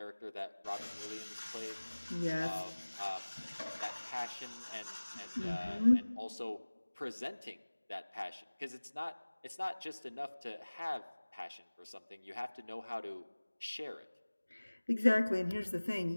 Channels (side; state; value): both; inverted; correlation -1.00